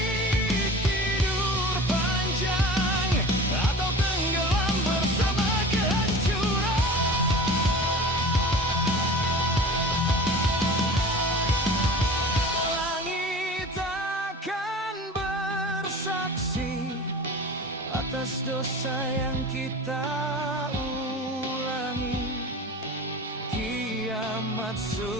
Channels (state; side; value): normal; both; correlation 0.37